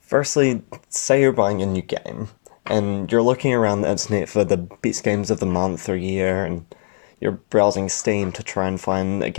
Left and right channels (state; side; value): silent; right; 65 dB below the other